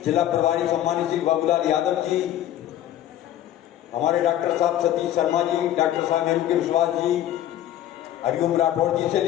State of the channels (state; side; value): quieter; right; 12.3 dB